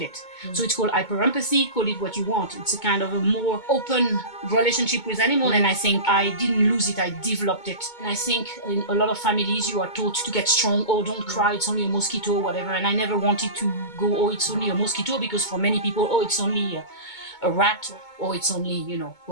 So it's called hyperempathy, call it what you want. It's a kind of a more open relationship with animal, and I think I didn't lose it, I developed it. And I think in a lot of families you are taught to get strong, oh, don't cry, it's only a mosquito, whatever. And I never wanted to go, oh, it's only a mosquito, because for many people, oh, it's only a rat, or it's only,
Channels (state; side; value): late; right; 2.2 ms